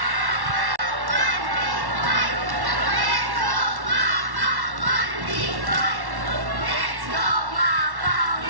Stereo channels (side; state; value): left; late; 1.1 ms